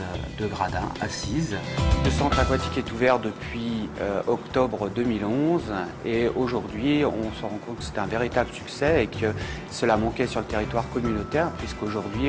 de gradins assises. Le centre aquatique est ouvert depuis octobre 2011 et aujourd'hui on se rend compte que c'est un véritable succès et que cela manquait sur le territoire communautaire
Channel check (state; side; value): identical; both; correlation 1.00